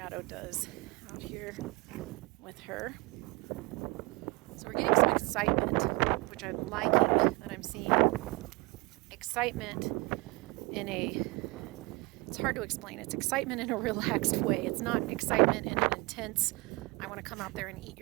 does out here with her. So we're getting some excitement, which I'm liking that I'm seeing. Excitement in it's hard to explain. It's excitement in a relaxed way. It's not excitement in an intense, I want to come out there and eat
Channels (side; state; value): left; quieter; 26.1 dB